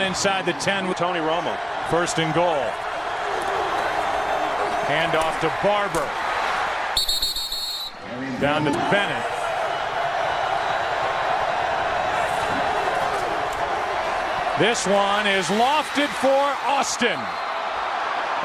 the 10 with Tony Romo. 1st and goal. Hand off to Barber. Down to Bennett. This one is lofted for Austin.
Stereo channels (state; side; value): identical; both; correlation 1.00